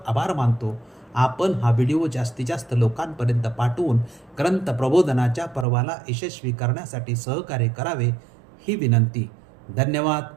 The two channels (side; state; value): left; drops out; at 5.7 s